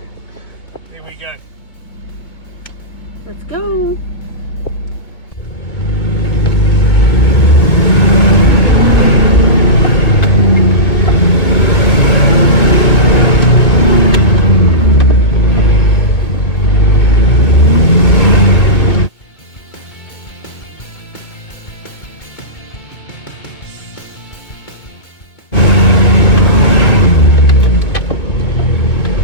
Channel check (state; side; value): late; right; 2.2 ms